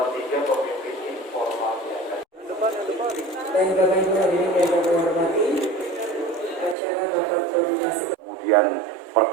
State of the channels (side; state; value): left; drops out; at 6.8 s